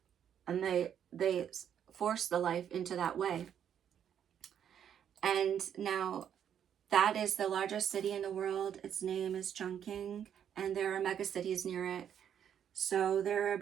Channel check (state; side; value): quieter; left; 9.0 dB